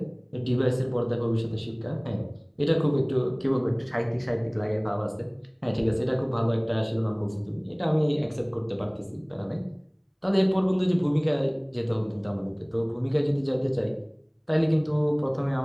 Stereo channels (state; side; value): identical; both; correlation 1.00